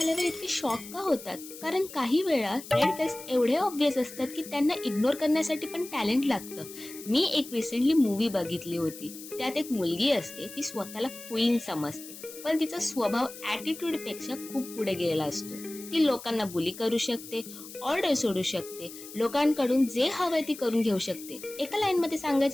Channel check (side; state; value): left; noise; hiss, 14 dB below the sound